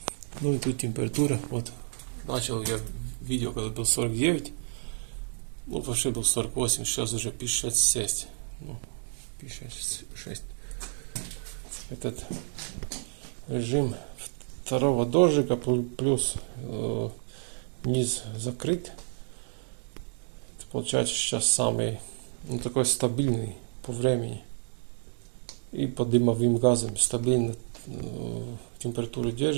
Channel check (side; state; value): left; silent; digital silence